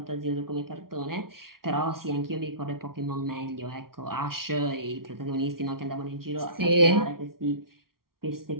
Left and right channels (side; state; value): left; late; 0.93 ms